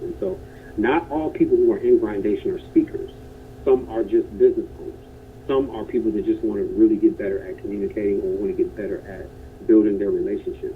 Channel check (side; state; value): both; identical; correlation 1.00